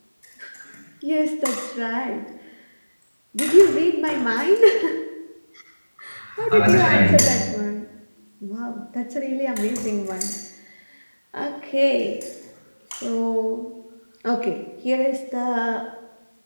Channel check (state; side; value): inverted; both; correlation -1.00